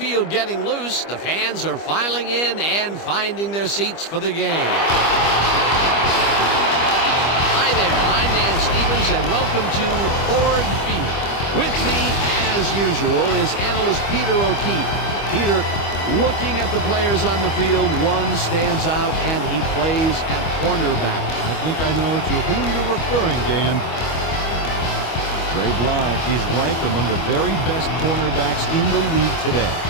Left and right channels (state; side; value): late; right; 25 ms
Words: getting loose, the fans are filing in and finding their seats for the game. Hi there, I'm Dan Stevens, and welcome to Ford Field. With me, as usual, is analyst Peter O'Keefe. Peter, looking at the players on the field, one stands out, and he plays at cornerback. I think I know to whom you're referring, Dan. Dre Bly is ranked among the very best cornerbacks in the league today.